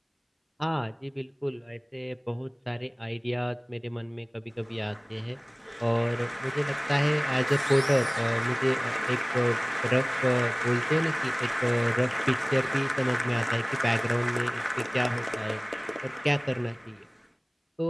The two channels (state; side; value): identical; both; correlation 1.00